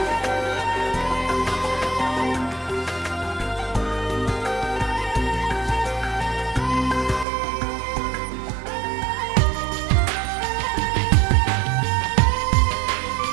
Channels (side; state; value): left; drops out; at 7.2 s